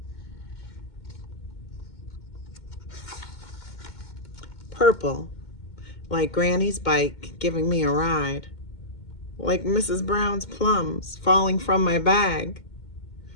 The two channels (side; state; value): right; late; 2.2 ms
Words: Purple, like Granny's bike giving me a ride, like Mrs. Brown's plums falling from my bag,